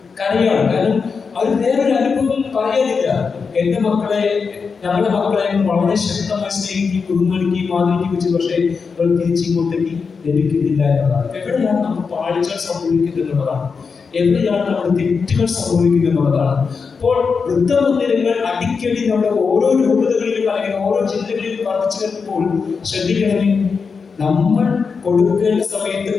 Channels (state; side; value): quieter; right; 5.3 dB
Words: കരയാണ്? കാരണം അവർ വേറൊരു അനുഭവം പറയാനില്ല. എന്റെ മക്കളെ, ഞങ്ങളുടെ മക്കളെ വളരെ ശക്തമായി സ്നേഹിക്കുകയും ബഹുമാനിക്കുകയും ആദരിക്കുകയും, പക്ഷേ അവർ തിരിച്ചിങ്ങോട്ടേക്ക് ലഭിക്കുന്നില്ല എന്നതാണ്. എവിടെയാണ് നമുക്ക് പാളിച്ചകൾ സംഭവിക്കുന്നത് എന്നുള്ളതാണ്, എവിടെയാണ് നമ്മുടെ തെറ്റുകൾ സംഭവിക്കുന്നത് എന്നുള്ളതാണ്. അപ്പോൾ വൃദ്ധമന്ദിരങ്ങൾ അടിക്കടി നമ്മുടെ ഓരോ രൂപതകളിലും അല്ലെങ്കിൽ ഓരോ ജില്ലകളിലും വർദ്ധിച്ചു വരുമ്പോൾ ശ്രദ്ധിക്കണമേ, നമ്മൾ കൊടുക്കേണ്ട സമയത്ത്